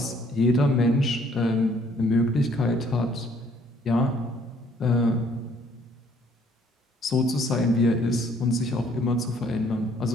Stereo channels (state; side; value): normal; both; correlation 0.62